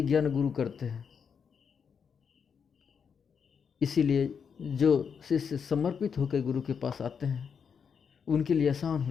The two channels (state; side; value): quieter; right; 6.6 dB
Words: गुरु करते हैं। इसीलिए जो शिष्य समर्पित होकर गुरु के पास आते हैं उनके लिए आसान